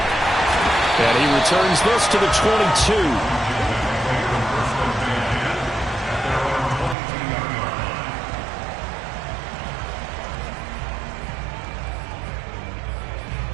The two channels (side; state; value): left; drops out; at 7.0 s